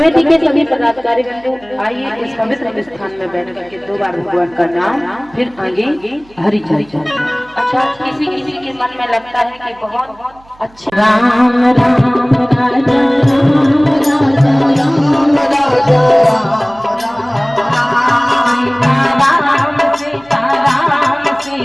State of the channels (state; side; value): noise; right; hum, 28 dB below the sound